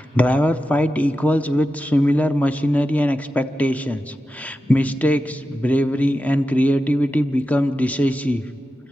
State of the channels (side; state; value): both; normal; correlation 0.92